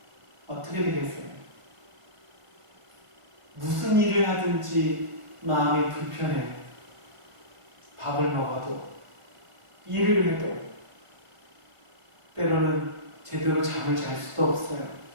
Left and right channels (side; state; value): left; late; 1.5 ms